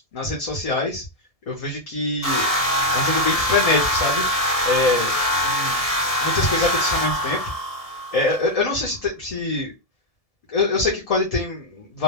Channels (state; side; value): late; right; 1.7 ms